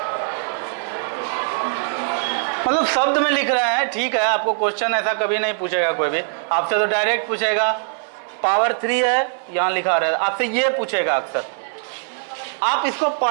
मतलब शब्द में लिख रहे हैं, ठीक है? आपको क्वेश्चन ऐसा कभी नहीं पूछेगा कोई भी आपसे, तो डायरेक्ट पूछेगा पावर 3 है, यहां लिखा रहा है, आपसे ये पूछेगा अक्सर। आप इसको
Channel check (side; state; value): left; silent; 57 dB below the other